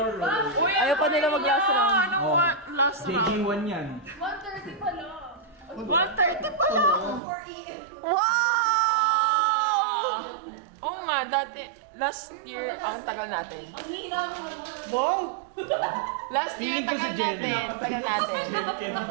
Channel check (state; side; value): drops out; left; at 7.2 s